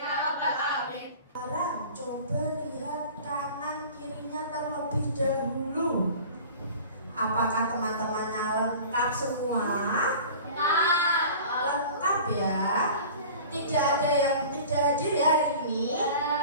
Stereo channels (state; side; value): inverted; both; correlation -0.41